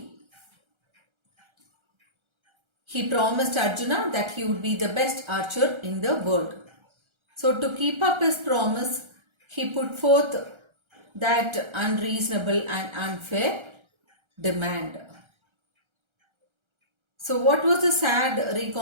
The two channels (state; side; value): late; left; 1.3 ms